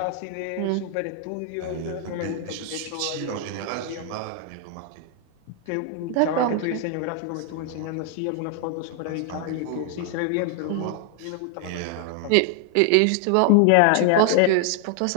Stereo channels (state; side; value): different; both; correlation 0.00